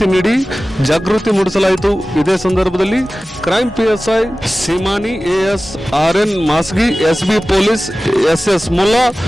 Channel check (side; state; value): both; normal; correlation 0.96